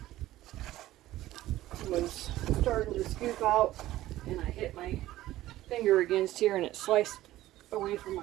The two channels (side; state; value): left; quieter; 15.3 dB